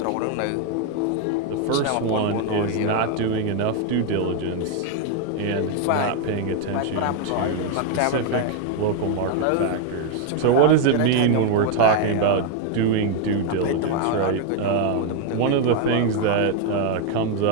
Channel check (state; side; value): different; both; correlation 0.00